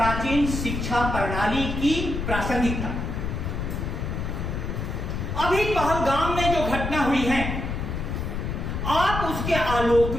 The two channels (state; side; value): noise; left; rumble, 3 dB below the sound